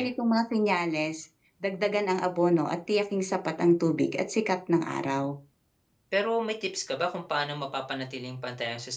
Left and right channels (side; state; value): both; identical; correlation 1.00